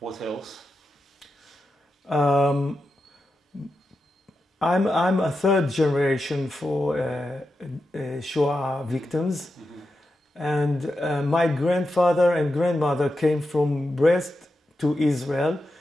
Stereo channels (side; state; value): both; normal; correlation 0.89